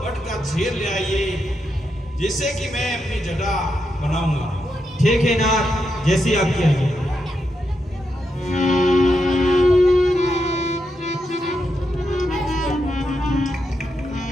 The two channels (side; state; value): both; normal; correlation 0.84